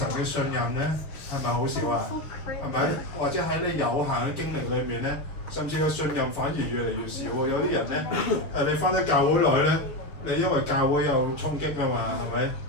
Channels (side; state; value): right; late; 6.5 ms